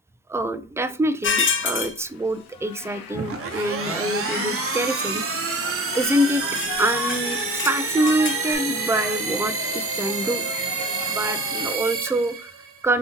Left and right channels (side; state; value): both; normal; correlation 0.41